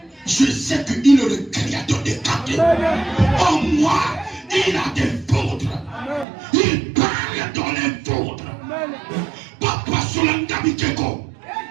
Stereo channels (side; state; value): left; drops out; at 6.2 s